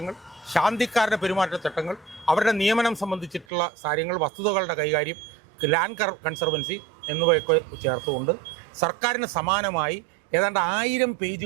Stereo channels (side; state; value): left; drops out; at 3.5 s